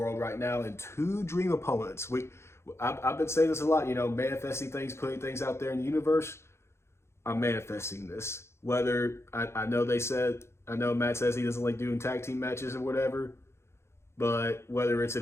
right now, and two dream opponents. I've been saying this a lot, you know, manifesting things, putting things out there in the universe. I'm manifesting this. Whether I know I know Matt says he doesn't like doing tag team matches or whatever, but whether it's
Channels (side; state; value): right; late; 0.13 ms